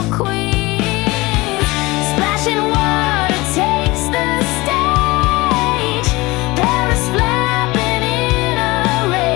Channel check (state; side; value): quieter; right; 21.9 dB